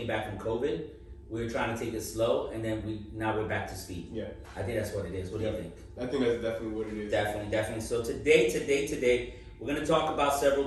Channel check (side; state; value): both; identical; correlation 1.00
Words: back from COVID, we were trying to take it slow, and then now we're back to speed. Yeah. I think that's what it is. What do you think? I think that's definitely what it is. Definitely. So today, we're going to talk about